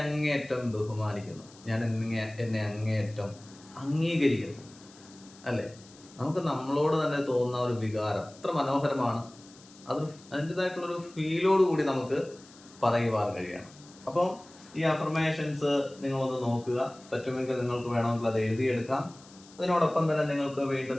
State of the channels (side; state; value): left; noise; hiss, 23 dB below the sound